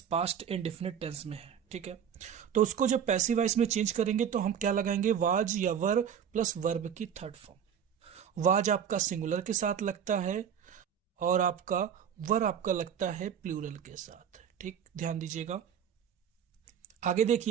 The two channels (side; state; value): left; quieter; 8.3 dB